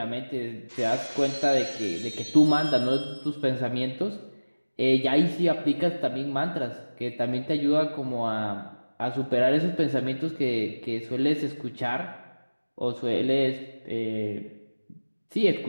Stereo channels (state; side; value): inverted; both; correlation -1.00